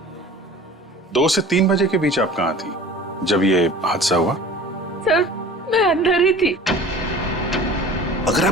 2 से 3 बजे के बीच आप कहाँ थी जब ये हादसा हुआ? सर, मैं अंदर ही थी। अगर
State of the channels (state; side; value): normal; both; correlation 0.42